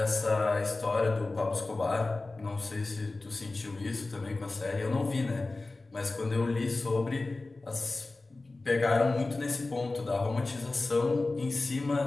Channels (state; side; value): quieter; right; 3.2 dB